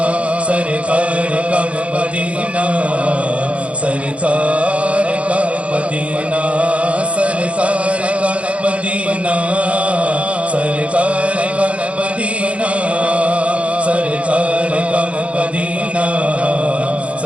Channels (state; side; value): late; left; 0.062 ms